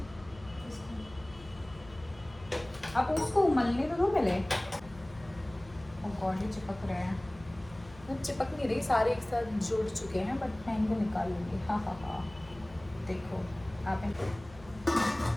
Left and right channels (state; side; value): noise; left; hum, 20 dB below the sound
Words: आप उसको उमलने तो दो पहले। ओह गॉड, ये चिपक रहे हैं। वो चिपक नहीं रही, सारे एक साथ जुड़ चुके हैं, बट मैं इनको निकाल लूँगी। हाँ हाँ हाँ, देखो आप